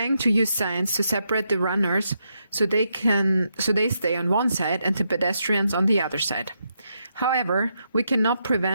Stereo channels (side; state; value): both; inverted; correlation -0.81